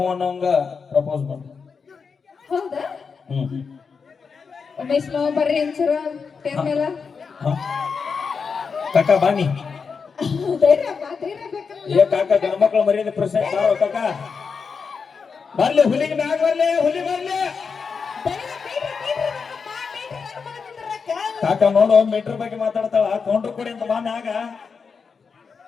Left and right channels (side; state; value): right; quieter; 5.5 dB